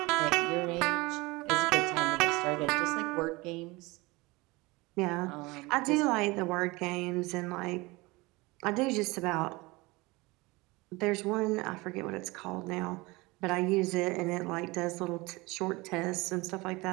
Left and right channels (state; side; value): quieter; left; 23.2 dB